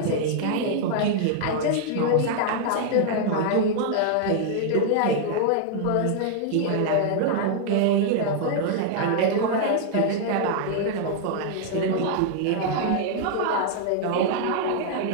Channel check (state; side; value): different; both; correlation -0.01